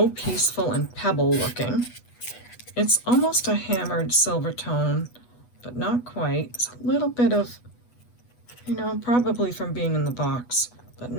peaceful and pebble looking. It's almost a hammered silver tone, but not quite. It's a little bit of, you know, probably from being in the box, but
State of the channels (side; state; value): right; late; 8.2 ms